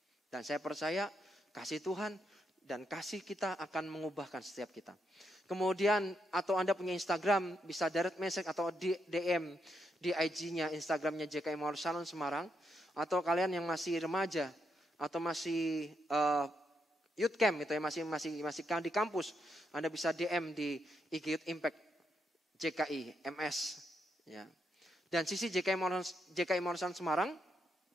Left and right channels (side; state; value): both; normal; correlation 0.81